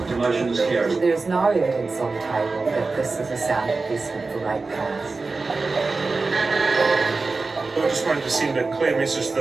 The motion is carried. There is no evidence on the table that this is a sound investment for ratepayers. I just wanted to send a clear message to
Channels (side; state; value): left; quieter; 3.9 dB